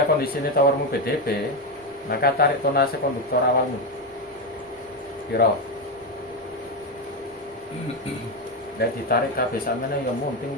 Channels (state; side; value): normal; both; correlation 0.10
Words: kondisinya towermu PDP, maka tarik tonase konduktor awalmu. Piro? Dan ditarik kabeh sampeyan ya munting